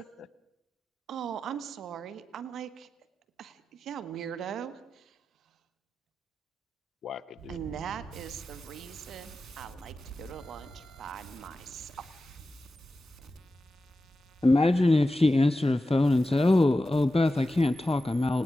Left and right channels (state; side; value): normal; both; correlation 0.93